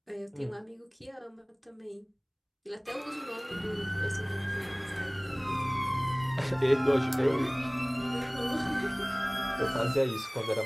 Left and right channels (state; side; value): identical; both; correlation 1.00